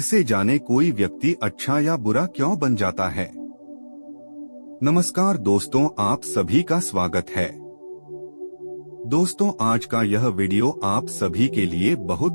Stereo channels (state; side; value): inverted; both; correlation -1.00